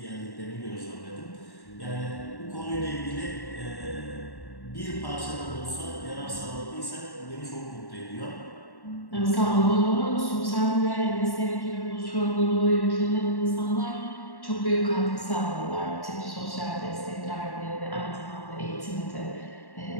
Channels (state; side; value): late; right; 1.1 ms